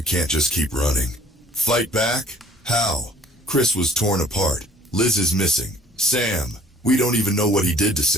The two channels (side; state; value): both; normal; correlation 0.54